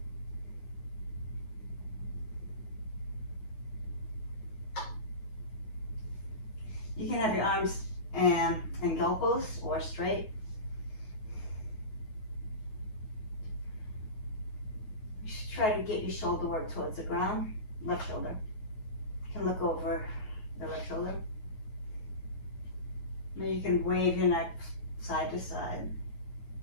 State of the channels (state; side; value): late; right; 9.4 ms